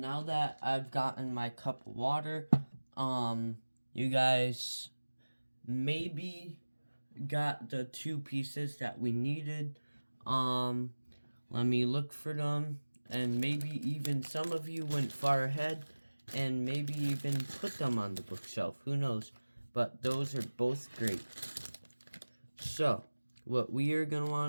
that I've gotten my cup of water, you guys maybe got the 2 pieces that we needed. Let me look for them, and maybe even some of you went far ahead, and maybe even put them on the bookshelf, who knows, but those are both great. So, what we are going to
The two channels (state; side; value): inverted; both; correlation -1.00